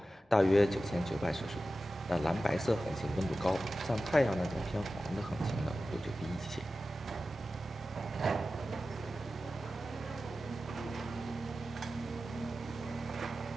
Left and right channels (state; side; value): normal; both; correlation 0.94